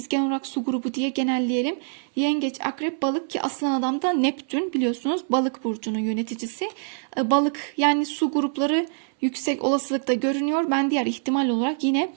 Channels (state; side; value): silent; left; 62 dB below the other